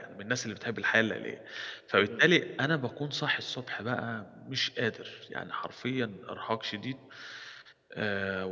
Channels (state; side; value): identical; both; correlation 1.00